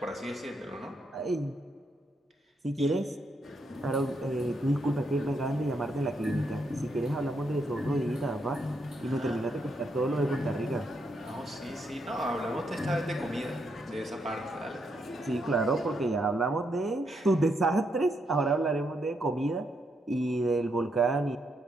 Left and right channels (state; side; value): normal; both; correlation 0.78